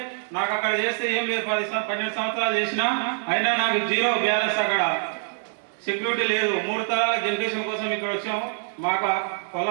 నాకు అక్కడ చేస్తే ఏం లేదు. 12 సంవత్సరాలు చేసినా అయినా నాకు 0 బ్యాలెన్స్. అక్కడ సెక్యూరిటీ లేదు. 3 తరాల జనరేషన్ కోసం ఇక్కడ వచ్చాము. మాకు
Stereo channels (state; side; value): silent; left; 62 dB below the other